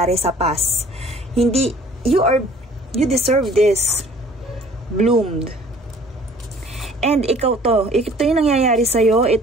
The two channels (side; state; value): both; normal; correlation 0.53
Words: sa past. Hindi, you deserve this. Bloomed. And ito yung nangyayari sa'yo,